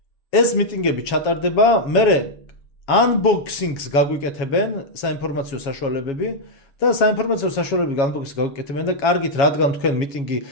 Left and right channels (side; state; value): right; late; 7.2 ms